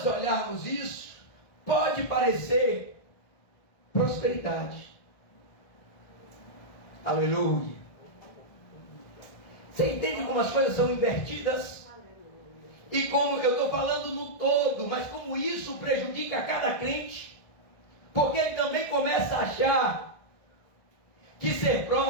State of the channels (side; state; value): right; late; 1.6 ms